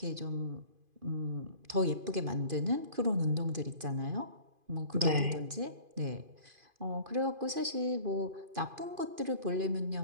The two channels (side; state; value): left; late; 2.5 ms